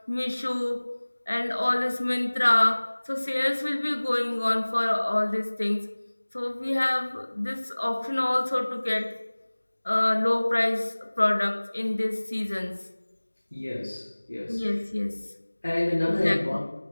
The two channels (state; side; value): inverted; both; correlation -1.00